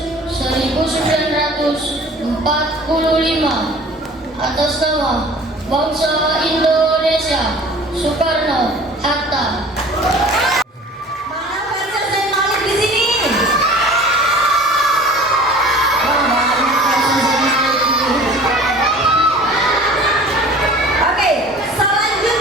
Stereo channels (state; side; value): normal; both; correlation 0.45